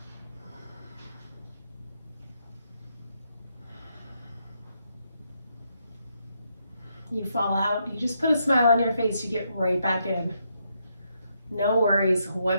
You fall out, you just put a smile on your face, you get right back in. No worries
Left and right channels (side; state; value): both; inverted; correlation -0.78